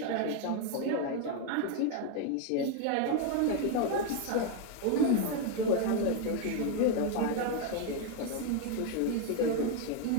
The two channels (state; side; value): different; both; correlation 0.01